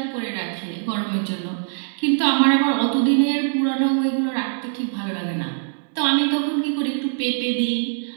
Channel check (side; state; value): left; silent; digital silence